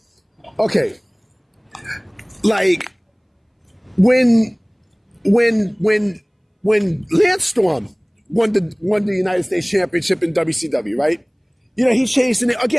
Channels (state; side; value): identical; both; correlation 1.00